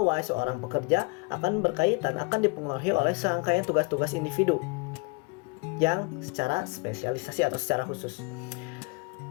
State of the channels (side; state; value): right; quieter; 29.9 dB